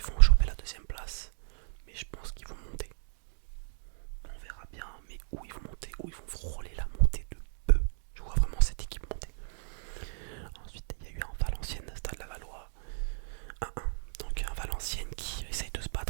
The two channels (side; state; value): left; silent; digital silence